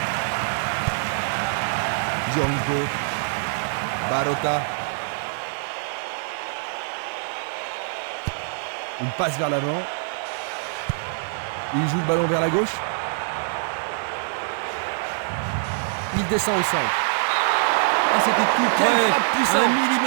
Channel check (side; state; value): left; silent; digital silence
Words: Djuranko. Barota. Une passe vers l'avant. Il joue le ballon vers la gauche. Il descend au centre. Ah, c'était tout Quelle près. frappe puissante. 1